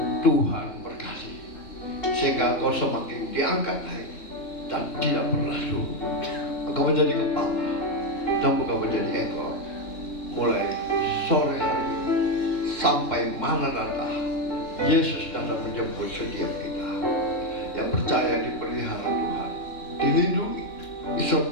Tuhan berkati, sehingga kau semakin diangkat naik dan tidak pernah turun. Engkau menjadi kepala dan bukan menjadi ekor, mulai sore hari ini sampai Maranatha. Yesus datang menjemput setiap kita yang percaya dipelihara Tuhan, dilindungi,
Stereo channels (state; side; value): late; right; 2.9 ms